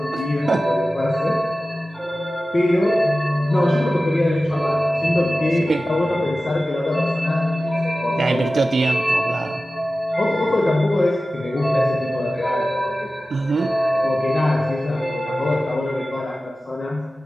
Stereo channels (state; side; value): normal; both; correlation 0.95